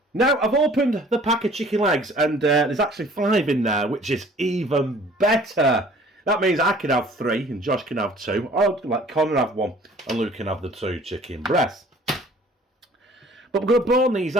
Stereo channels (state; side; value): normal; both; correlation 0.52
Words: Now, I've opened the pack of chicken legs, and there's actually 5 in there, which is even better. That means I can have 3, and Josh can have 2, or let Connor have 1, and Luke can have the 2 chicken breasts. But we're going to bone these